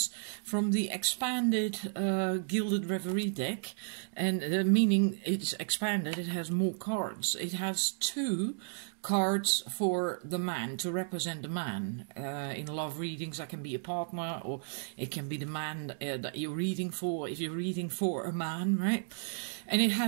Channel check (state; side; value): silent; left; digital silence